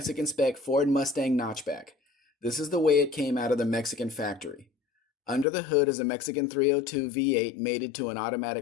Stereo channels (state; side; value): drops out; right; at 5.5 s